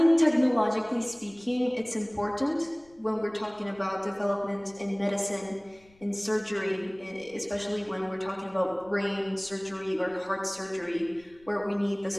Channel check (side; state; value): left; noise; rumble, 29 dB below the sound